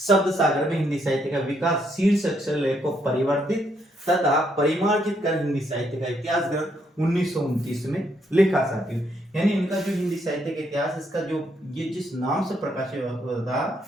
सागर में हिंदी साहित्य का विकास शीर्षक से लेख को परिवर्तित तथा परिमार्जित कर हिंदी साहित्य का इतिहास ग्रंथ 1929 में लिखा साथियों। यानी इनका जो हिंदी साहित्य का इतिहास, इसका जो ये जिस नाम से प्रकाशित हुआ था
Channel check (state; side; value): normal; both; correlation 0.74